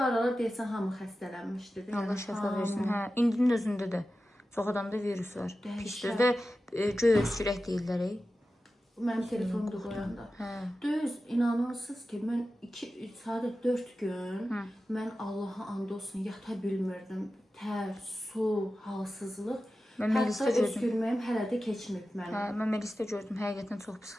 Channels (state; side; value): normal; both; correlation 0.93